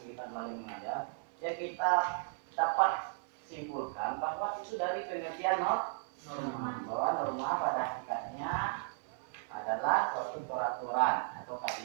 belajar mengajar, ya kita dapat simpulkan bahwa itu dari pengertian norma, bahwa norma pada hakikatnya adalah suatu peraturan atau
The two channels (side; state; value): left; silent; 54 dB below the other